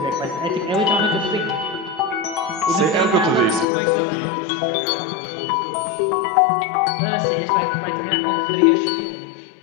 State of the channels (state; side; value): drops out; right; at 3.7 s